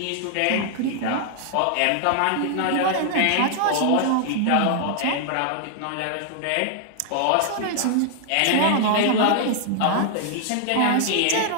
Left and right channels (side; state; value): both; different; correlation 0.00